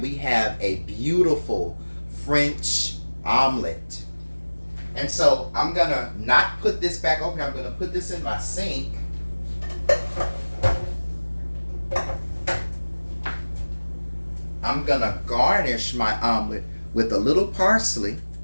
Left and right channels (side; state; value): both; inverted; correlation -1.00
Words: we have a beautiful French omelet. And so I'm going to not put this back over here. I'm going to put this in my sink. I'm going to garnish my omelet with a little parsley.